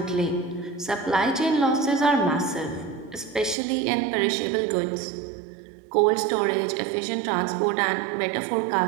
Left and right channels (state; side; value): drops out; left; at 3.6 s